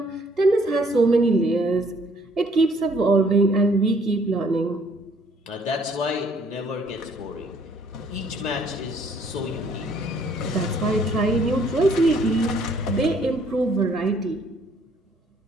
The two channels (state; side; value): normal; both; correlation 0.63